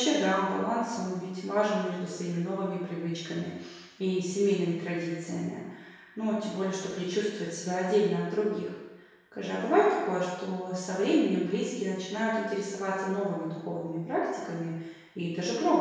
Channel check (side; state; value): both; identical; correlation 1.00